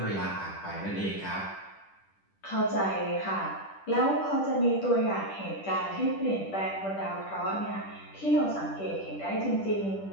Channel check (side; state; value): right; late; 10 ms